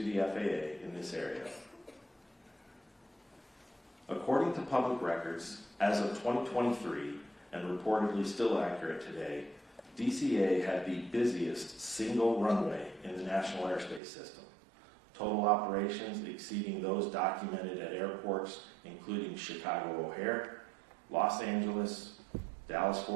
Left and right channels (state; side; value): drops out; left; at 14.0 s